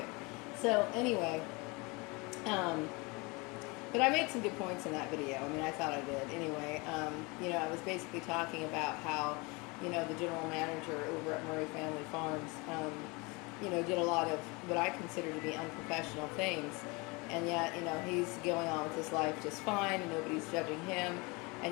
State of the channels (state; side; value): quieter; right; 27.2 dB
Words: So, anyway, but I made some good points in that video. I mean, I thought I did. Anyway, I was basically talking about how, the general manager over at Murray Family Farms, did a lot of what I consider to be unprofessional things. And yet, he's going on with his life just fine and nobody's judging him.